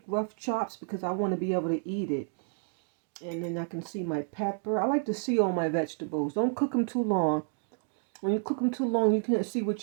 rough chops because I want to be able to eat it. And then I can see my pepper. I like to see all my vegetables. Don't cook them too long. When you cook them too long, you can't see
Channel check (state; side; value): silent; left; 58 dB below the other